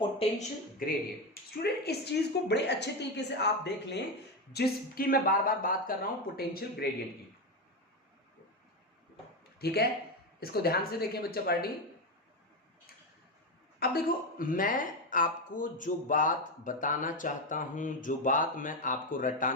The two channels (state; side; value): normal; both; correlation 0.12